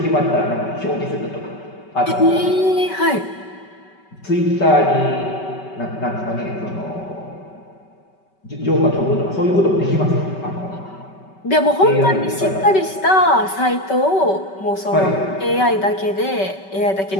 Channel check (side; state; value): right; late; 5.2 ms